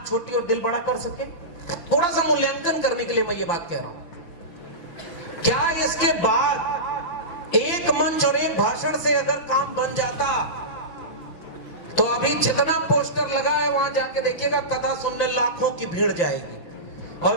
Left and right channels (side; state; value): right; late; 5.9 ms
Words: छोटी और दिल बड़ा कर सके? थोड़ा सा मूल्यांकन करने के लिए मैं ये बात कह रहा हूं। क्या इसके बाद एक मंच और एक भाषण से अगर काम बन जाता तो अभी जितना पोस्टर लगा है वहां जाके देखिएगा, कथा सुनने लाखों की भीड़ जाएगी।